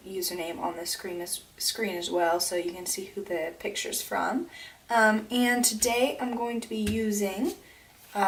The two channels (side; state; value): both; identical; correlation 1.00